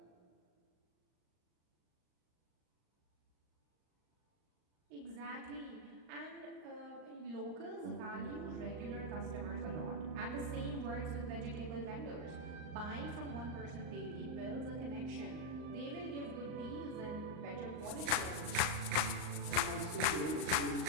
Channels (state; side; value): late; left; 39 ms